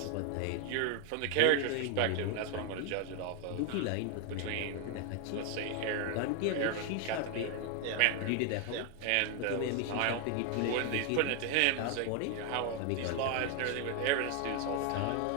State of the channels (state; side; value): different; both; correlation 0.01